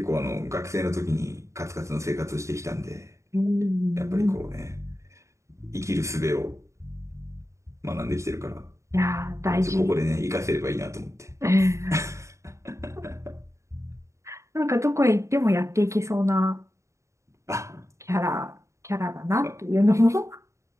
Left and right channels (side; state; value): left; late; 0.14 ms